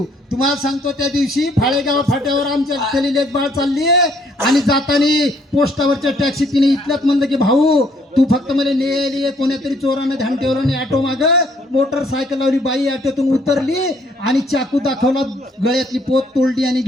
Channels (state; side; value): normal; both; correlation 0.66